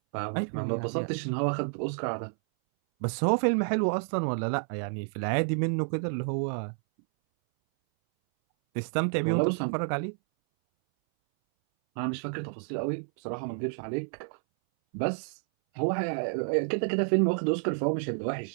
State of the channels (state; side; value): silent; left; 58 dB below the other